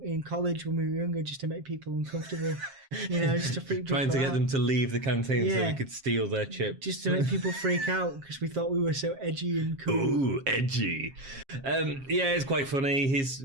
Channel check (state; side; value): late; left; 7.4 ms